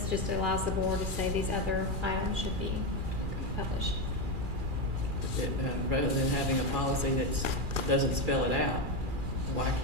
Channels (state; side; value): late; left; 2.4 ms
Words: just allows the board to say these other items should be published. Rather than having a policy that doesn't spell it out, why